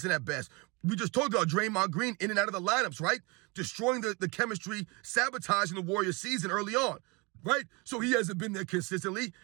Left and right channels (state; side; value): quieter; left; 28.0 dB